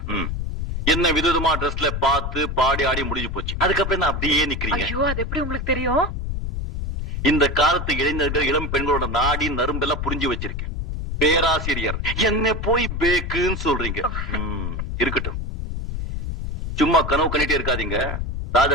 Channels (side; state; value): left; noise; rumble, 3 dB below the sound